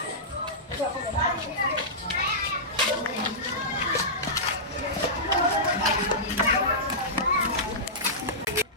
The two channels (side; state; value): both; normal; correlation -0.15